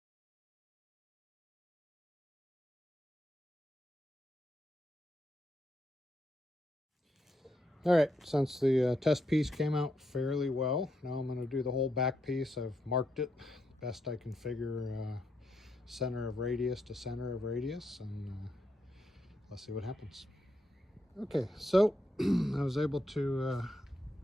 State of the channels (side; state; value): both; normal; correlation 0.80